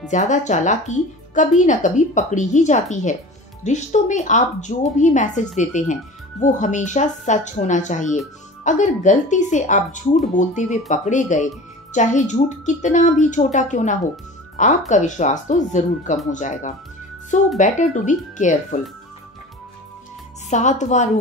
ज्यादा चालाकी कभी न कभी पकड़ी ही जाती है। रिश्तों में आप जो भी मैसेज देते हैं वो हमेशा सच होना चाहिए। अगर गलती से आप झूठ बोलते हुए पकड़े गए, चाहे झूठ कितना भी छोटा क्यों ना हो, आपका विश्वास तो जरूर कम हो जाएगा। So better to be careful. सातवां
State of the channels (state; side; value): normal; both; correlation 0.38